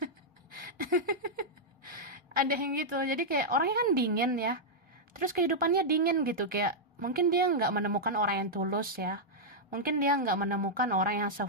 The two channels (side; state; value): both; normal; correlation -0.06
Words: Ada yang gitu. Jadi kayak orangnya kan dingin ya. Terus kehidupannya dingin gitu. Kayak mungkin dia nggak menemukan orang yang tulus ya. Mungkin dia nggak menemukan orang yang